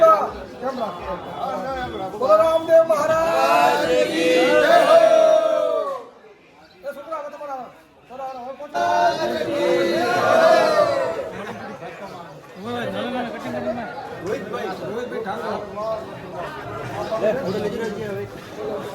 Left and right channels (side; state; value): both; identical; correlation 1.00